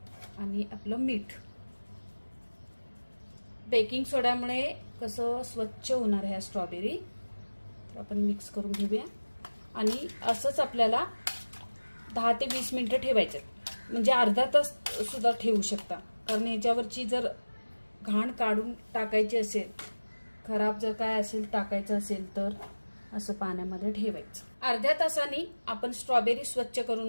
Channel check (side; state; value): both; inverted; correlation -1.00